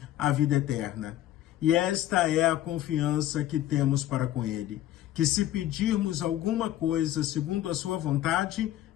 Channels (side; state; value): right; quieter; 13.2 dB